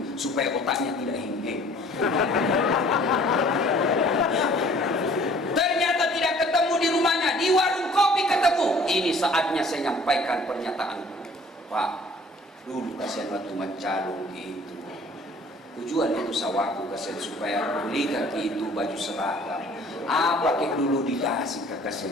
supaya otaknya tidak heng-heng. Ternyata tidak ketemu di rumahnya, di warung kopi ketemu. Ini saatnya saya nyampaikan pernyataan. Pak, dulu kasihan waktu mencalon gitu. Tujuan itu sawahku kasihan supaya beli kaki itu baju seragam. Apa kek dulu dikasih ke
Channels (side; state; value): both; normal; correlation 0.53